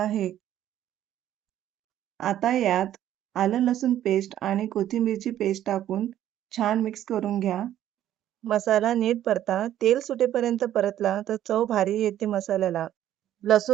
आता यात आलं लसूण पेस्ट आणि कोथिंबीरची पेस्ट टाकून छान मिक्स करून घ्या. मसाला नीट परता. तेल सुटेपर्यंत परतला तर चव भारी येते मसाल्याला.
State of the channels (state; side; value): quieter; left; 11.9 dB